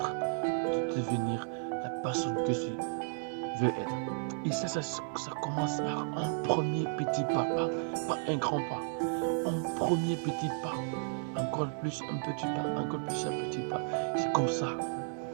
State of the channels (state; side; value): silent; left; digital silence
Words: de devenir la personne que tu veux être. Et ça commence par un premier petit pas, pas un grand pas. Un premier petit pas, encore plus un petit pas, encore plus un petit pas. C'est comme ça,